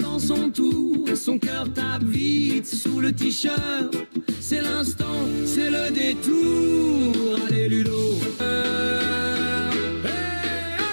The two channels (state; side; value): inverted; both; correlation -1.00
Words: son tour, son cœur tape vite sous le t-shirt. C'est l'instant, c'est le détour. Allez Ludo, hey,